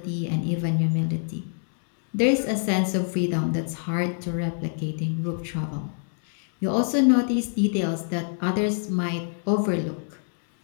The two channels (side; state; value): right; silent; 61 dB below the other